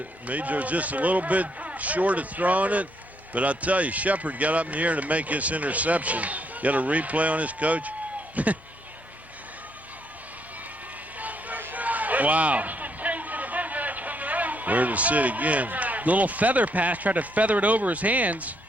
was just a little bit short of throwing it. But I'll tell you, Shepard got up in the air to make his interception. Got a replay on his coach. Wow. Where to sit again. Little feather pass, tried to feather it over his hands.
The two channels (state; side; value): normal; both; correlation 0.73